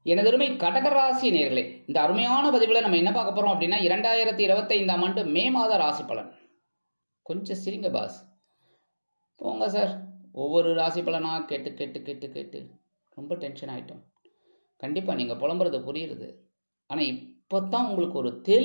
எனதருமை கடகராசி நேயர்களே, இந்த அருமையான பதிவில் நம்ம என்ன பார்க்க போறோம் அப்படின்னா 2025ஆம் ஆண்டு மே மாத ராசி பலன். கொஞ்சம் சிரிங்க பாஸ், போங்க சார். ஒவ்வொரு ராசி பலனாக கேட்டு கேட்டு கேட்டு கேட்டு ரொம்ப டென்ஷன் ஆகிட்டோம். கண்டிப்பாக நீங்கள் புலம்புறது புரியுறது. ஆனால் இப்போ தான் உங்களுக்கு ஒரு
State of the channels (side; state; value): both; inverted; correlation -1.00